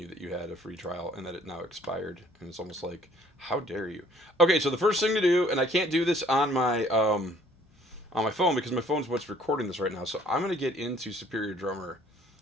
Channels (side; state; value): both; normal; correlation 0.58